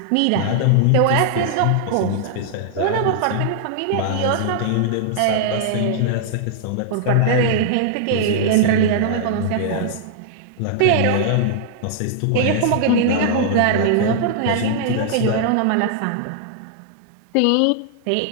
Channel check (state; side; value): different; both; correlation -0.01